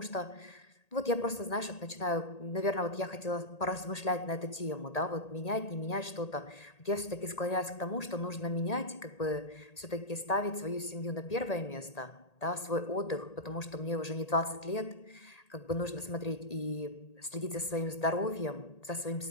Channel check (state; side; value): late; right; 1.8 ms